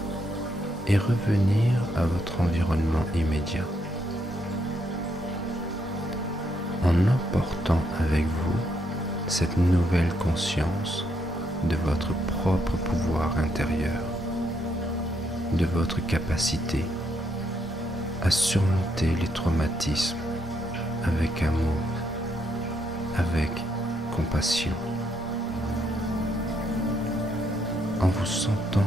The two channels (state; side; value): normal; both; correlation 0.76